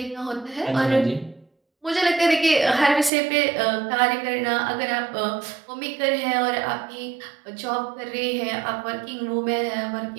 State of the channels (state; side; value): drops out; left; at 3.1 s